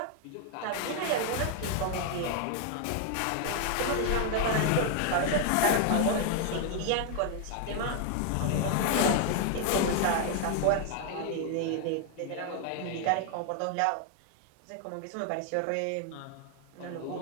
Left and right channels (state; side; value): different; both; correlation 0.00